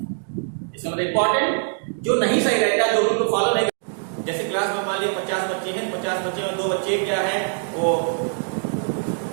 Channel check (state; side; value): silent; left; 62 dB below the other